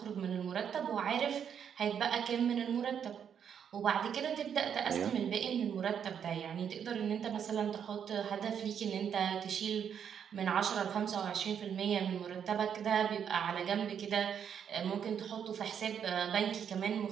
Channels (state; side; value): quieter; left; 8.1 dB